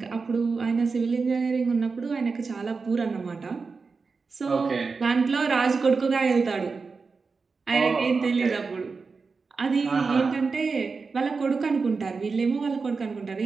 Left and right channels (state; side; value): quieter; left; 4.6 dB